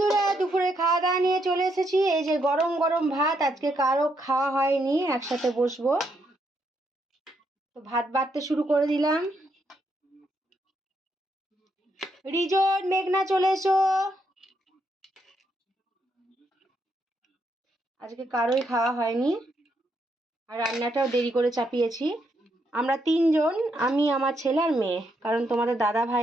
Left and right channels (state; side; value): normal; both; correlation 0.77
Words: দুপুরে খাওয়া দাওয়া নিয়ে চলে এসেছি। এই যে গরম গরম ভাত, আজকে কারো খাওয়া হয়নি, একসাথে বসবো। তো ভাত বাড়তে শুরু করে দিলাম। রিজন, মেঘনা চলে এসো। আজকে কারোই খাওয়া হয়নি, আর রান্নাটাও দেরি করে চাপিয়েছি। আমরা তিনজন, আমি, আমার ছেলে আর মেয়ে, কারণ তোমাদের দাদা